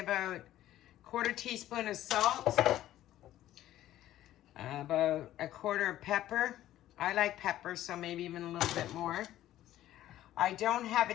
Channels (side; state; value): right; quieter; 13.5 dB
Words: 1/4 teaspoon of salt, about 1/4 of pepper. I like pepper, so maybe even a little bit more. I don't have a